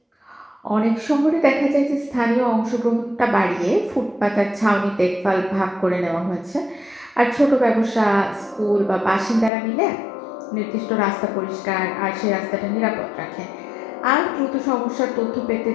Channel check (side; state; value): right; drops out; at 9.5 s